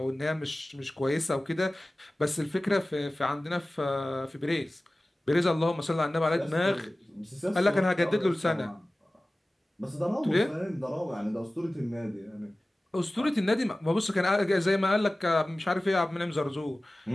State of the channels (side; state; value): both; normal; correlation 0.97